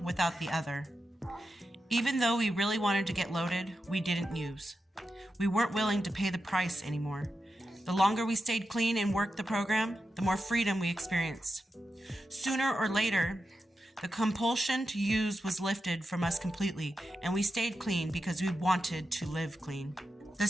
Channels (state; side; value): normal; both; correlation 0.89